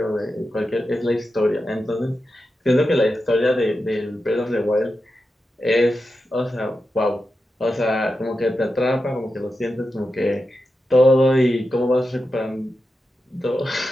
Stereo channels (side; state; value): both; normal; correlation 0.90